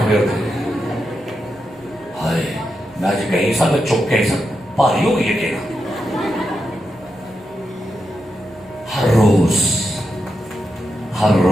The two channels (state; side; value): noise; right; rumble, 29 dB below the sound